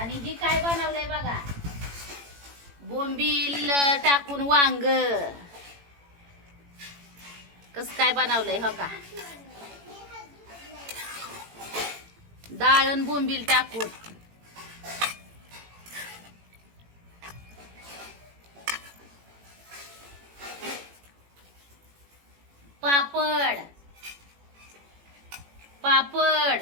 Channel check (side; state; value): left; late; 18 ms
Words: ही काय बनवलंय बघा, बोंबील टाकून वांग. कस काय बनवलंय हो का, डाळ आणि बोंबील टाकून. पापड पापड